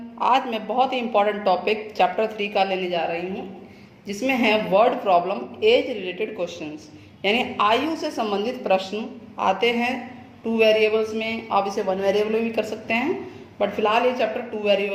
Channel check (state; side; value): identical; both; correlation 1.00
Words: आज मैं बहुत ही इम्पोर्टेंट टॉपिक चैप्टर 3 का लेने जा रही हूँ, जिसमें है word problem age related questions, यानी आयु से संबंधित प्रश्न आते हैं 2 वेरिएबल्स में। आप इसे 1 वेरिएबल में भी कर सकते हैं, बट फिलहाल ये चैप्टर 2